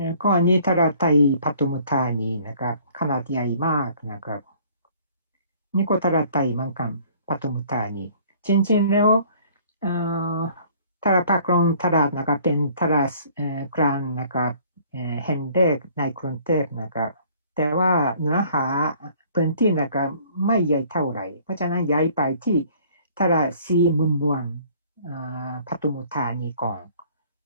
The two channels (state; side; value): inverted; both; correlation -0.55